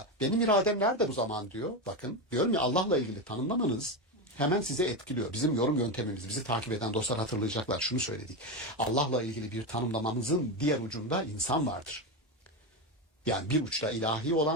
benim iradem nerede bu zaman diyor. Bakın, diyorum ya, Allah'la ilgili tanımlamanız hemen size etkiliyor. Bizim yorum yöntemimiz, bizi takip eden dostlar hatırlayacaklar. Şunu söyledik. Allah'la ilgili bir tanımlamamızın diğer ucunda insan vardır. Yani bir uçta ilahi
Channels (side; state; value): both; normal; correlation 0.14